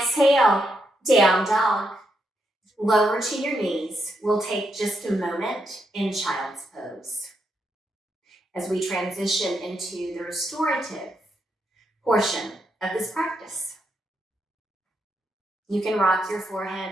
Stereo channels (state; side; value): normal; both; correlation 0.81